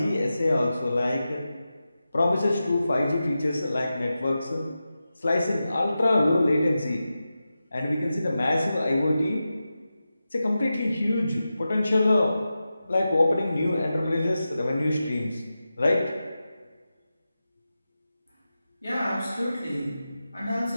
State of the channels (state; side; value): inverted; both; correlation -0.92